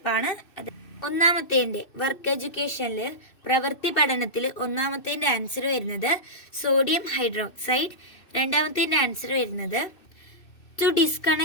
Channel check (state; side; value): late; right; 2.6 ms